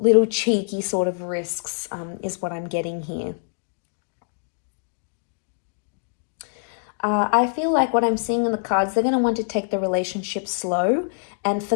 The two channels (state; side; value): silent; right; digital silence